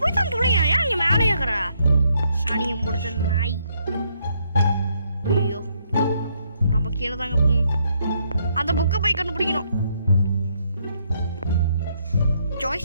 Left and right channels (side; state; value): both; inverted; correlation -0.73